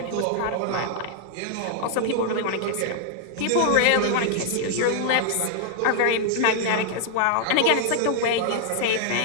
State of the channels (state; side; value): different; both; correlation -0.01